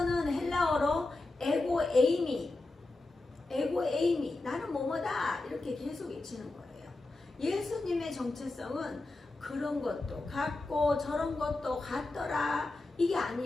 헬라어로 에고에이미 나는 뭐뭐다 이렇게 계속 외치는 거예요. 예수님의 정체성은 그런 것도 같고 저런 것도 같더라 이게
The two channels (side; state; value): right; quieter; 3.1 dB